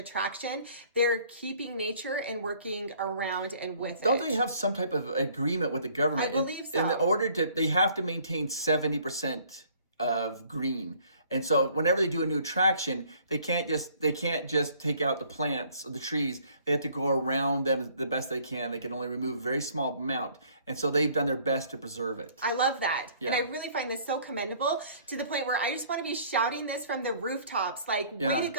They're keeping nature and working around and with it. Don't they have some type of agreement with the government? I believe so. In order they have to maintain 70% of green. And so whenever they do a new attraction, they can't just take out the plants or the trees. They have to go around them the best they can. They can only remove a very small amount. And so they've done their best to preserve it. I love that. Yeah. And I really find this so commendable, to the point where I just want to be shouting this from the rooftops, like, way to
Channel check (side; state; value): both; inverted; correlation -0.58